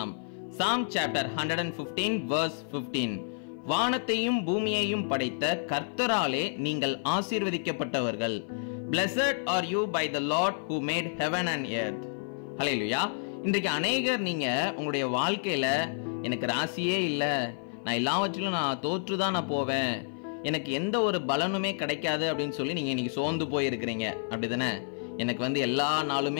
Psalm chapter 115 verse 15. வானத்தையும் பூமியையும் படைத்த கர்த்தராலே நீங்கள் ஆசீர்வதிக்கப்பட்டவர்கள். Blessed are you by the Lord who made heaven and earth. ஹல்லேலூயா. இன்றைக்கு அநேகர் நீங்க உங்களுடைய வாழ்க்கையில எனக்கு ராசியே இல்லை, நான் எல்லாவற்றிலும் நான் தோற்றுதான் நான் போவேன், எனக்கு எந்த ஒரு பலனுமே கிடைக்காது அப்படின்னு சொல்லி நீங்க இன்னைக்கு சோர்ந்து போயிருக்கிறீங்க. அப்படிதானே? எனக்கு எல்லா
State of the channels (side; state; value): right; silent; 55 dB below the other